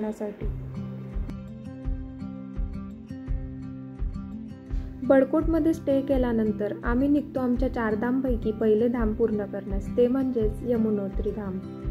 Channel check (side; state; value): both; identical; correlation 1.00